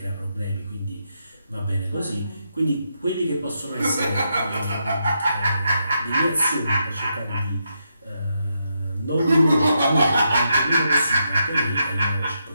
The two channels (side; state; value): both; inverted; correlation -0.82